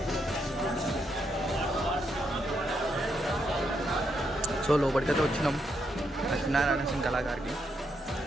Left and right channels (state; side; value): normal; both; correlation 0.79